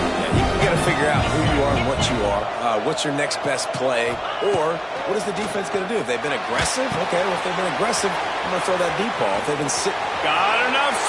you got to figure out who you are and what you are. What's your next best play? Or what is the defense going to do? If they've been aggressive, okay, well, if they've been aggressive, I'm going to throw that deep ball. If they've been sitting. Got enough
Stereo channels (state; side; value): identical; both; correlation 1.00